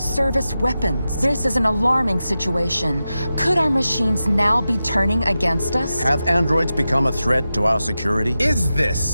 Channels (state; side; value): inverted; both; correlation -0.92